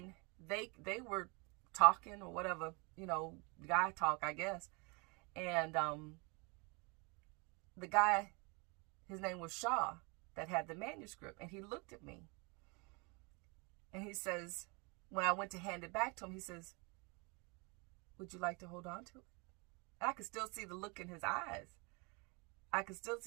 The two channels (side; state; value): left; quieter; 30.4 dB